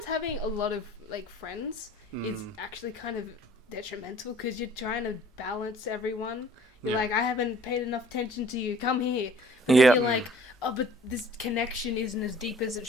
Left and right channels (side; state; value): both; normal; correlation 0.53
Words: having a lot of like friends is Mm. actually kind of detrimental because you're trying to balance everyone. You're Yeah. like, I haven't paid enough attention to you. Come here. But Yeah. then you're like, oh, but this connection isn't as deep as it